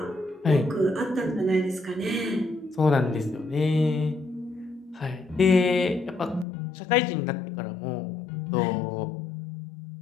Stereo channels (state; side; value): drops out; right; at 6.5 s